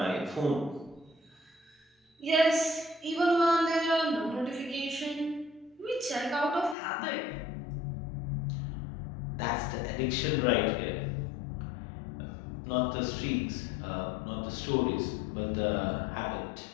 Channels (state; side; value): drops out; right; at 6.8 s